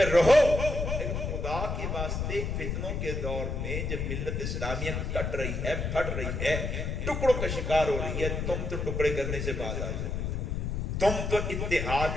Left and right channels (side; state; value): left; noise; rumble, 2 dB below the sound